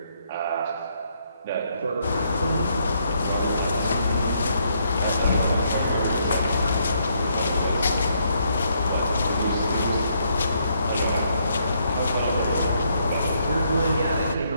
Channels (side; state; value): both; inverted; correlation -0.73